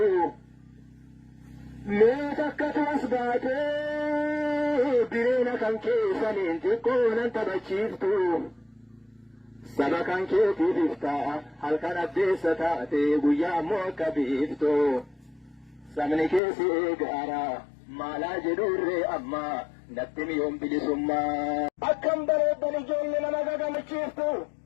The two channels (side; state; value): right; drops out; at 16.4 s